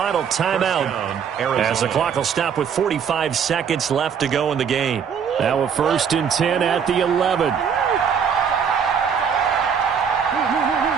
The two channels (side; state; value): left; quieter; 7.2 dB